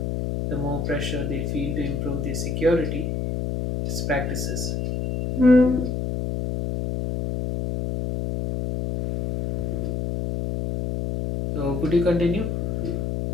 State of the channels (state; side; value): noise; left; hum, 2 dB below the sound